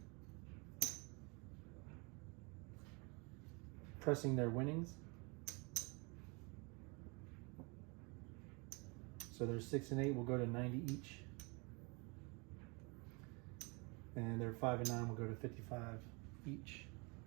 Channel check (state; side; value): quieter; left; 30.4 dB